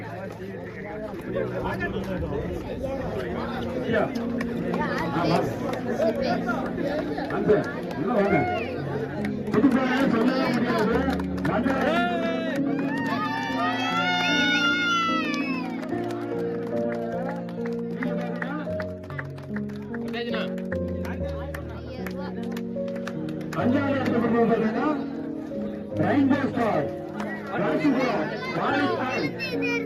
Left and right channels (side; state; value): both; identical; correlation 1.00